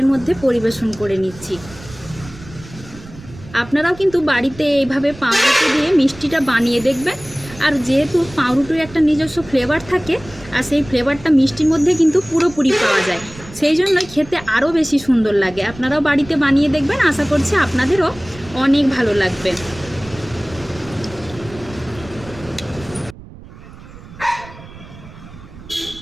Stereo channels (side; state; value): right; noise; rumble, 18 dB below the sound